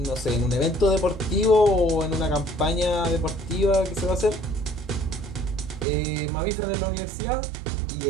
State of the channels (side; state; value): left; drops out; at 5.9 s